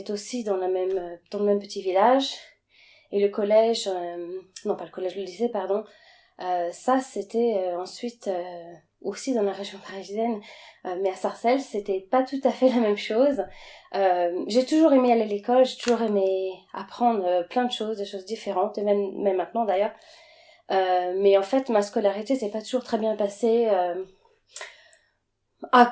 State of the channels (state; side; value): identical; both; correlation 1.00